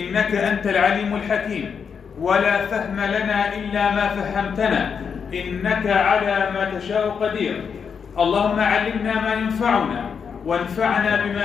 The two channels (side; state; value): right; quieter; 6.5 dB